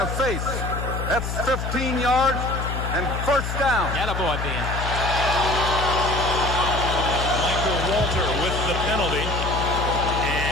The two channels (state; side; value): noise; left; hum, 3 dB below the sound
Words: face. That's 15 yards and first down. Attaboy, Ben. Michael Walter with the penalty